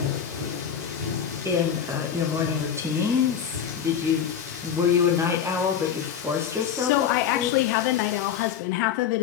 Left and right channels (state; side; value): quieter; right; 8.4 dB